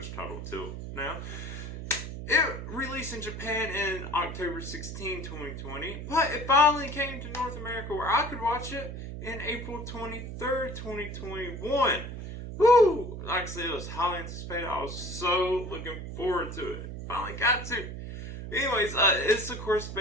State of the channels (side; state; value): right; noise; hum, 8 dB below the sound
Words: title till now. It released in Japan in October 16, 2020, but it finally came to North America where I could watch it in April 23rd, 2021. Woo! Like I said, it was highly anticipated. I was so looking forward to it. Finally got to. Anyways, it's of course